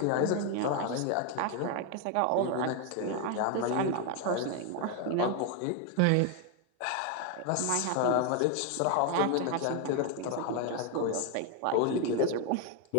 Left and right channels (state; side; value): different; both; correlation 0.01